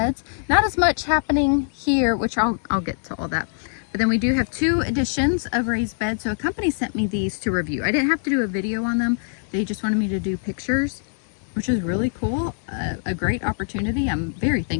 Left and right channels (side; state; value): right; silent; digital silence